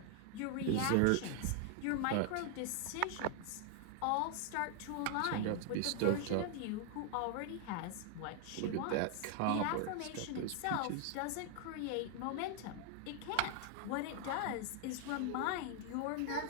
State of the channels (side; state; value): both; different; correlation 0.00